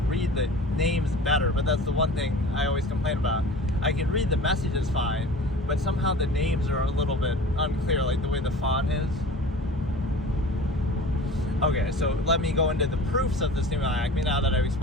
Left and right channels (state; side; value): normal; both; correlation 0.40